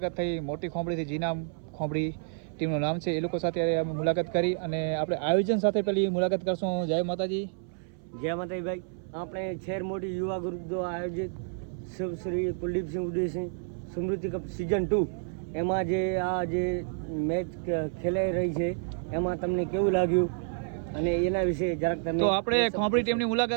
થઈ। મોટી ખોંભડીથી જીનામ ખોંભડી ટીમનું નામ છે। એ લોકો સાથે અમે મુલાકાત કરી અને આપણે આયોજન સાથે પેલી મુલાકાત કરશું। જય માતાજી। જય માતાજી ભાઈ। આપણે શહેર મોટી યુવા ગ્રુપ દ્વારા આયોજિત શ્રી કુલદીપસિંહ ઉદયસિંહ સ્મૃતિ કપ સિઝન 2 એમાં જે મેચ ખેલાઈ રહી છે એમાં તમને કેવું લાગ્યું અને એના વિશે જરાક તમે તો આપણે ખોંભડી ટીમની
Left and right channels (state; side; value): silent; left; 58 dB below the other